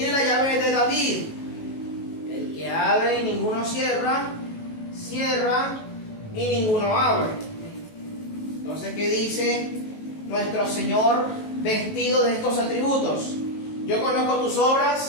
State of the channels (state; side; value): late; right; 18 ms